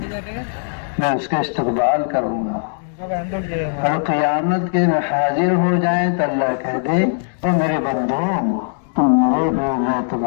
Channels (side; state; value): right; silent; digital silence